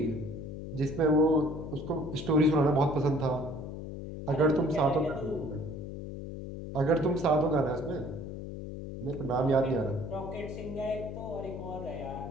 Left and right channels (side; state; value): left; noise; hum, 8 dB below the sound